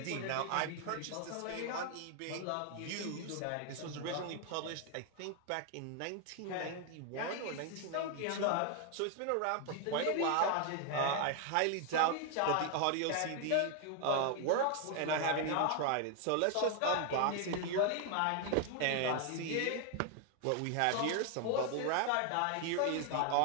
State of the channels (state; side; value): different; both; correlation 0.00